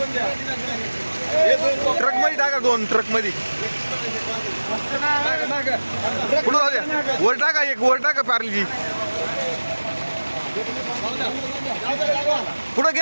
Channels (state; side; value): inverted; both; correlation -1.00